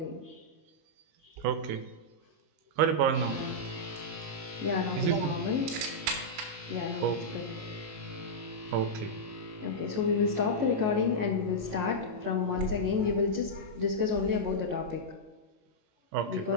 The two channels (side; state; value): left; late; 19 ms